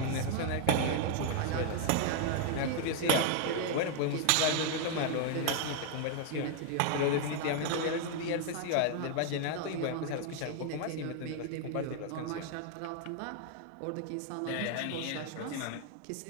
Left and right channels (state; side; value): different; both; correlation 0.00